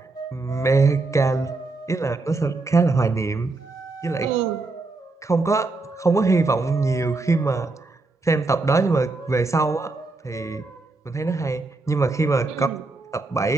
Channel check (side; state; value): left; quieter; 3.4 dB